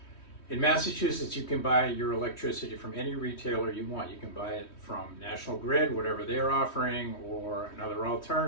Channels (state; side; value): late; right; 3.1 ms